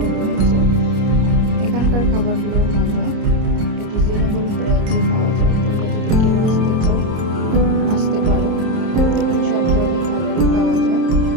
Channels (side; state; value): left; late; 29 ms